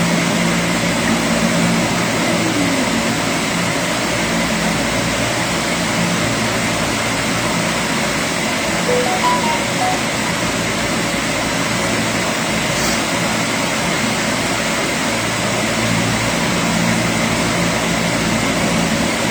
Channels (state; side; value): identical; both; correlation 1.00